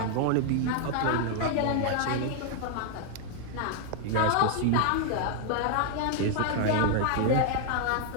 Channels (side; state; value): both; different; correlation 0.00